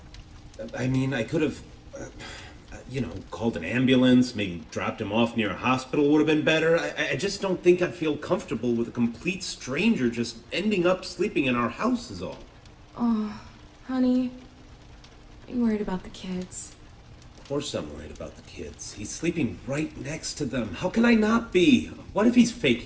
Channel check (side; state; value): both; identical; correlation 1.00